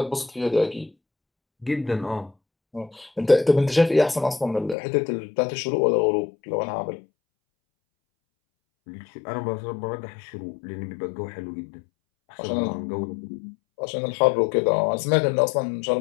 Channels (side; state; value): right; drops out; at 4.8 s